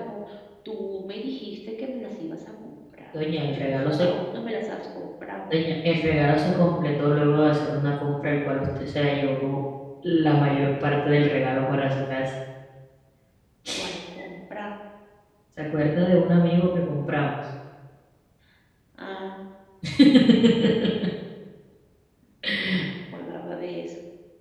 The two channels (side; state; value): both; identical; correlation 1.00